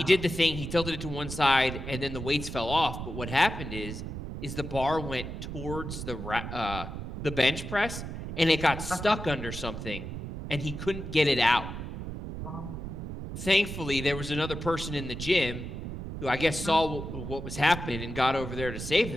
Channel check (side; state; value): right; noise; rumble, 7 dB below the sound